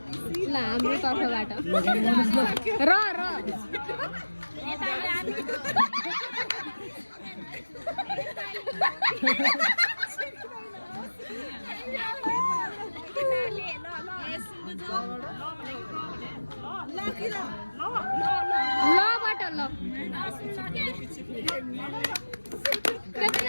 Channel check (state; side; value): inverted; both; correlation -1.00